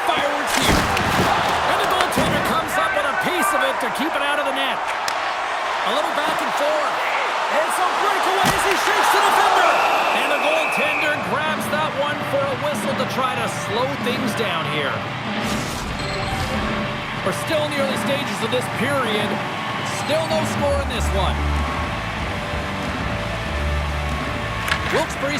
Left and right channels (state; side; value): identical; both; correlation 1.00